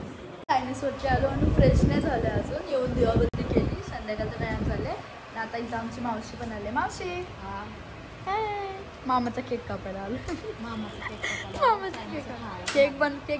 चायनीजवरती आलो आणि फ्रेश नाही झालं अजून. येऊन दिवाबत्ती केली, संध्याकाळचं टाइम झाले. आणि आता इथं आमची मावशी पण आले. मावशी हाय, मामाचा केक कापायला आलो. मामाचा केक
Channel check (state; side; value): identical; both; correlation 1.00